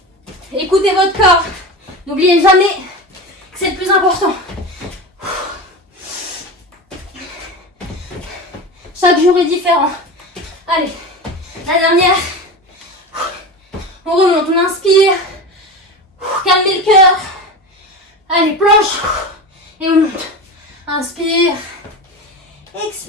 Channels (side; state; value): both; normal; correlation 0.26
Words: Écoutez votre corps. N'oubliez jamais que c'est le plus important. Chaque jour est différent. Allez, la dernière. On remonte, on inspire. Calmez le cœur. Allez, planche. Et on monte. Inspire.